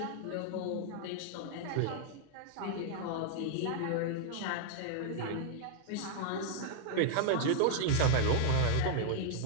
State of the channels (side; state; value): both; different; correlation -0.01